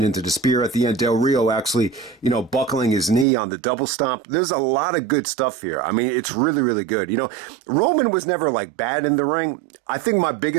into the spear at the end, Del Rio actually, buckling his knee on the double stomp. There's a lot of good stuff here. I mean, it's really, really good. Roman was never like bad in the ring. I think my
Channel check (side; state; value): left; drops out; at 3.2 s